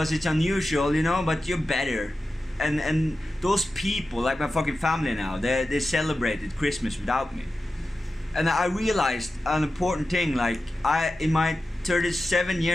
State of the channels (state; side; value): normal; both; correlation 0.93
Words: it's unusual, you know, but you're better. And those people, like my fucking family now, they celebrated Christmas without me. And I realized an important thing, like, in my 37